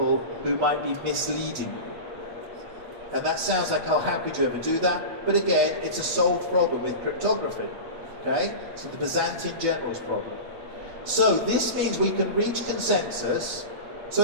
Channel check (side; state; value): left; late; 8.9 ms